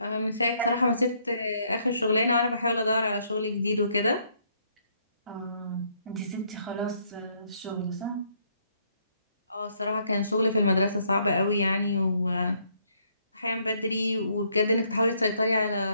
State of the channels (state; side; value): inverted; both; correlation -0.70